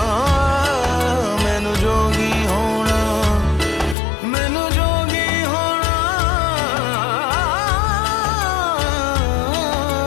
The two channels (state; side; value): drops out; right; at 4.0 s